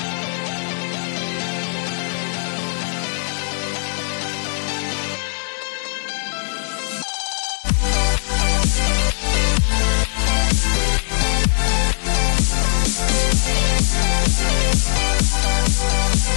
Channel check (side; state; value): right; silent; 66 dB below the other